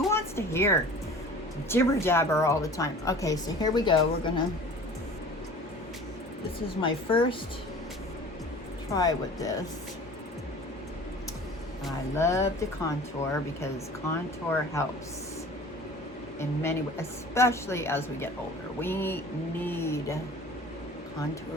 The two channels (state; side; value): normal; both; correlation 0.43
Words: wants to hear jibber jabber all the time? Okay, so here we go. This is my first try with this. I love to contour because contour helps in many ways, especially as we get older. We need